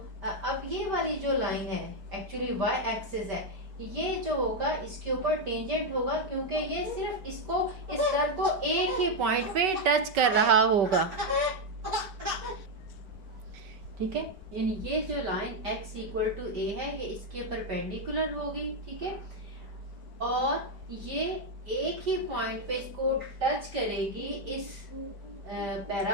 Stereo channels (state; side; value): late; left; 4.8 ms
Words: अब ये वाली जो लाइन है एक्चुअली y एक्सिस है, ये जो होगा इसके ऊपर टेंजेंट होगा क्योंकि ये सिर्फ इसको इस कर्व को एक ही पॉइंट पे टच कर रहा होगा, ठीक है। यानी ये जो line x equal to a है ये इसके परपेंडिकुलर होगी, ठीक है। और ये एक ही पॉइंट पे इसको टच करेगी, इस